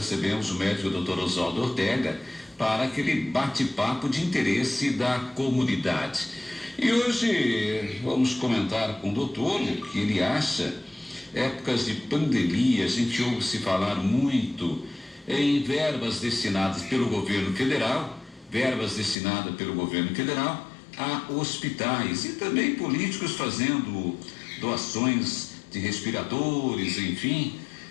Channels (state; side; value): drops out; right; at 19.2 s